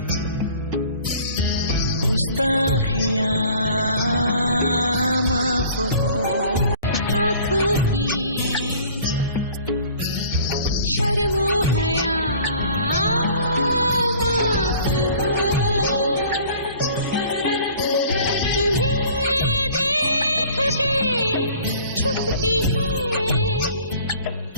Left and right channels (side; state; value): both; inverted; correlation -0.50